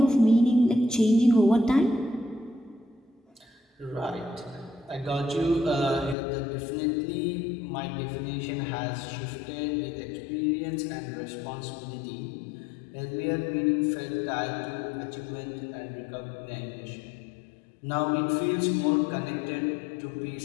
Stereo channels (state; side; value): drops out; right; at 6.2 s